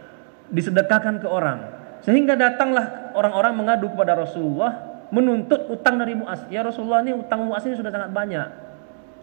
disedekahkan ke orang. Sehingga datanglah orang-orang mengadu kepada Rasulullah menuntut utang dari Mu'az. Ya Rasulullah, ini utang Mu'az ini sudah sangat banyak.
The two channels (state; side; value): silent; left; digital silence